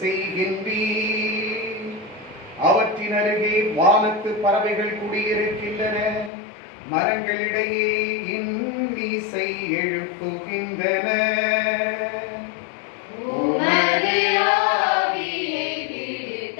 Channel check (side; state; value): right; drops out; at 6.3 s